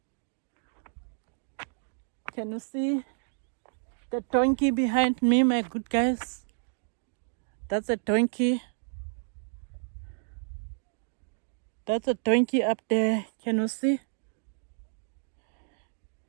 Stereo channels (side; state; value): left; silent; digital silence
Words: Can you see the donkey behind me, my good guys? That's a donkey. That's a donkey up there. Can you see?